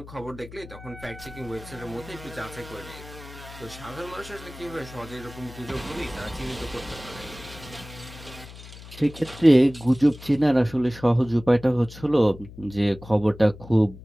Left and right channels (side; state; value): left; noise; hum, 16 dB below the sound